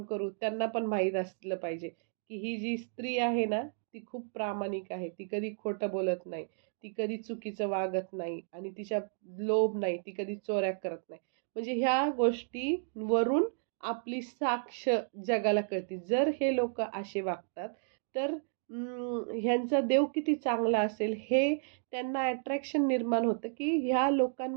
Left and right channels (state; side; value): silent; left; digital silence